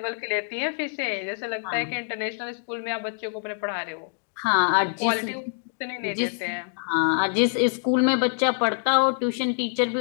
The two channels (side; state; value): right; silent; digital silence